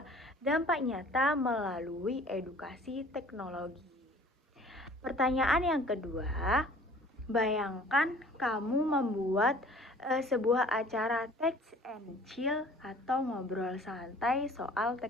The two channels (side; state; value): both; normal; correlation 0.50